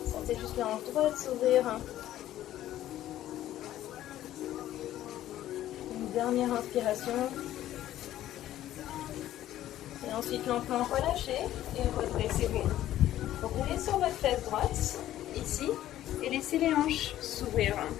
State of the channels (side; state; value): right; quieter; 13.2 dB